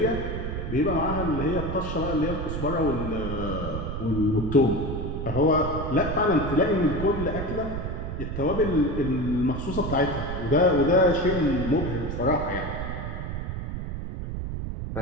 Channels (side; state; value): right; noise; rumble, 5 dB below the sound